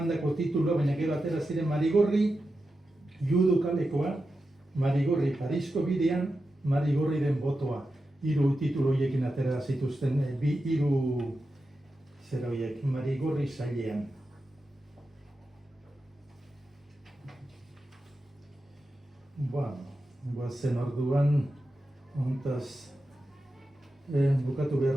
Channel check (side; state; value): both; normal; correlation 0.90